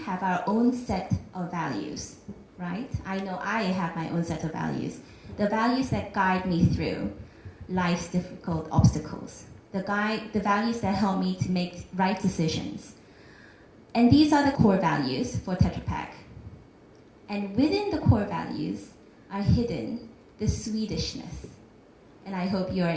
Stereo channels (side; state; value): both; identical; correlation 1.00